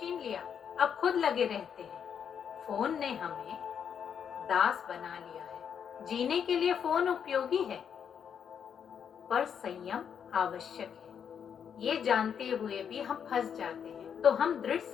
लिया, अब खुद लगे रहते हैं। फोन ने हमें दास बना लिया है। जीने के लिए फोन उपयोगी है, पर संयम आवश्यक है। ये जानते हुए भी हम फंस जाते हैं, तो हम दृढ़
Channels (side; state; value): right; quieter; 7.8 dB